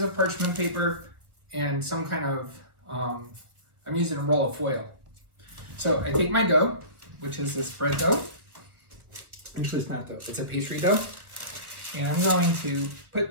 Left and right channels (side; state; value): left; late; 1.4 ms